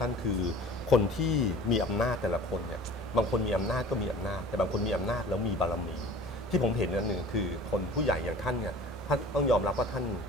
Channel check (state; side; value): normal; both; correlation 0.45